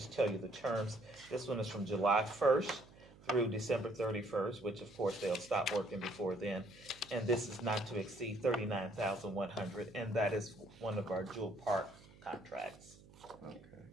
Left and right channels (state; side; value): noise; right; hum, 22 dB below the sound